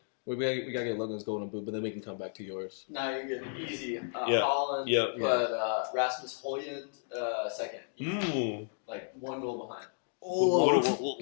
We gotta get Logan's golden boot, but then we can come back to yours. No, you're good. Easy. Yeah. Holland, Yeah. but Rasmus Højlund second. Ooh. Like 1 goal behind.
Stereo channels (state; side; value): silent; right; digital silence